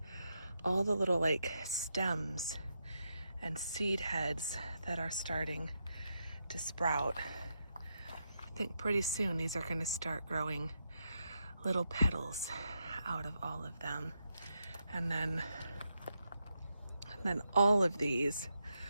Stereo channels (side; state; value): both; inverted; correlation -0.83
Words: all the little like stems and seed heads that are starting to sprout. I think pretty soon these are going to start growing little petals out of all of them. And then all of these